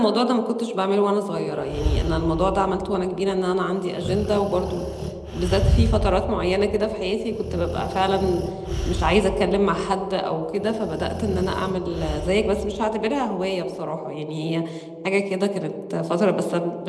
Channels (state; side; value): identical; both; correlation 1.00